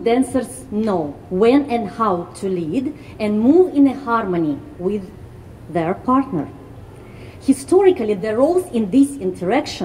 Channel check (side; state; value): both; identical; correlation 1.00